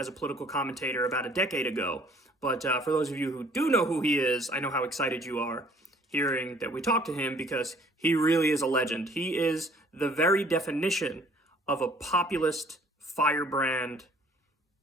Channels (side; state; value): both; normal; correlation 0.57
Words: a political commentator about a decade ago. But for those of you who do know who he is, I know how excited you are hearing that we talked to him because he really is a legend. He is the very definition of a populist, firebrand,